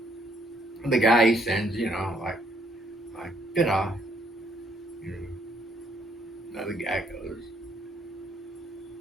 the guy he sends, like, da-da. Another guy goes,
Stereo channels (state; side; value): normal; both; correlation 0.68